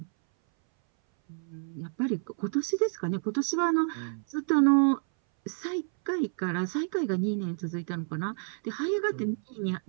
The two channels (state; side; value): silent; left; 58 dB below the other